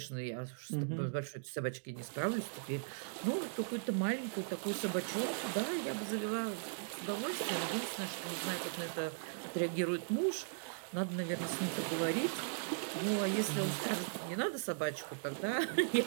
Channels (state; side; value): silent; left; digital silence